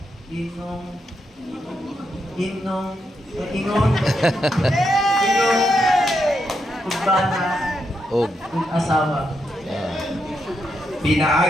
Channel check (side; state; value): both; normal; correlation 0.82